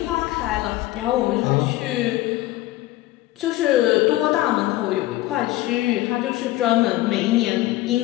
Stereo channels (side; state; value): right; quieter; 16.7 dB